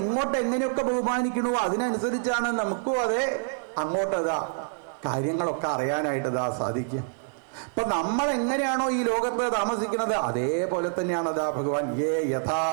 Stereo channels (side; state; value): left; silent; 60 dB below the other